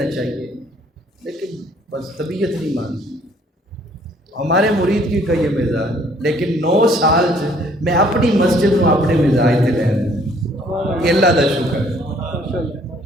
چاہیے، لیکن بس طبیعت نہیں مانتی۔ ہمارے مرید کی کا یہ مزاج، لیکن 9 سال میں اپنی مسجد میں اپنے مزاج سے لین یہ اللہ کا شکر ہے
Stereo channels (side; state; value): both; normal; correlation 0.61